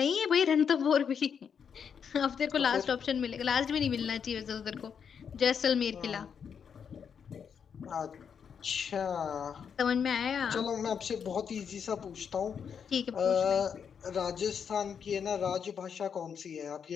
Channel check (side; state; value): right; quieter; 7.1 dB